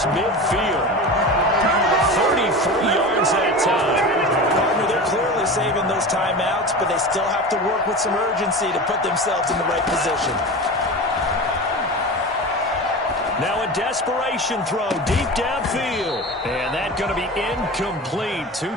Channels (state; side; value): normal; both; correlation 0.30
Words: midfield. 33 yards that time. Partner, they're clearly saving those timeouts, but they still have to work with some urgency to put themselves in the right position. Now a desperation throw deep downfield. And that's going to be incomplete. Too